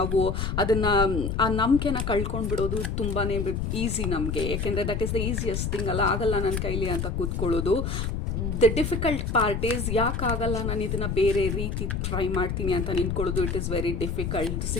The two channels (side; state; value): left; noise; rumble, 2 dB below the sound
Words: ಅದನ್ನು, ಆ ನಂಬಿಕೆನ ಕಳ್ಕೊಂಡು ಬಿಡೋದು ತುಂಬಾ ಈಸಿ ನಮಗೆ. ಯಾಕೆಂದರೆ that is the easiest thing ಅಲ್ಲ. ಆಗಲ್ಲ ನನ್ನ ಕೈಲಿ ಅಂತ ಕೂತ್ಕೊಳ್ಳೋದು. ದ ಡಿಫಿಕಲ್ಟ್ ಪಾರ್ಟ್ ಈಸ್ ಯಾಕಾಗಲ್ಲ ನಾನು ಇದನ್ನು ಬೇರೆ ರೀತಿ ಟ್ರೈ ಮಾಡ್ತೀನಿ ಅಂತ ನಿಂತ್ಕೊಳ್ಳೋದು. It is very difficult.